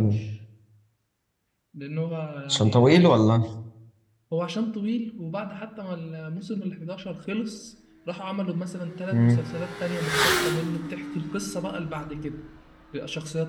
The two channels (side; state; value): both; identical; correlation 1.00